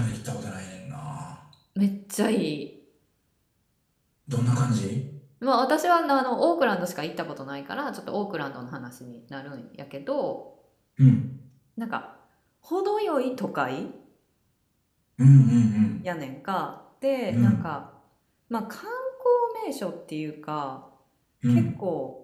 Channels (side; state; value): both; identical; correlation 1.00